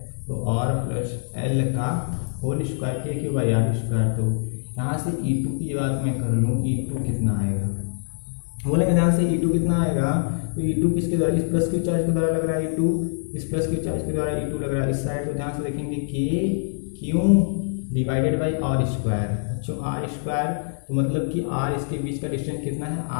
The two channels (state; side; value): silent; right; 62 dB below the other